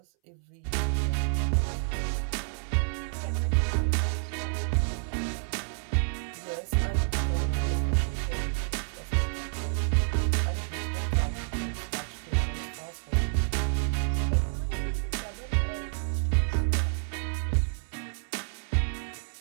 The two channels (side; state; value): left; silent; 58 dB below the other